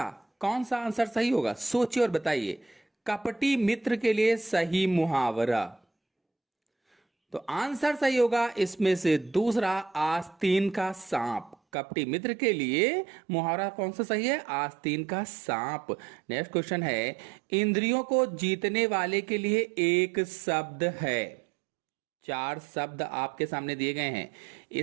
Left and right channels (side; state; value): left; drops out; at 11.6 s